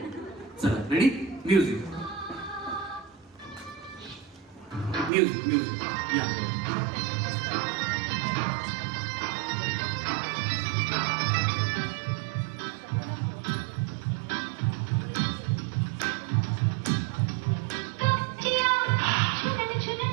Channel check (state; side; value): drops out; left; at 5.1 s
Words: चला रेडी. म्युझिक म्युझिक म्युझिक या. छुनन